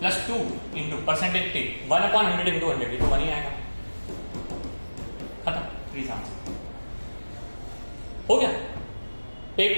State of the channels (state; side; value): inverted; both; correlation -1.00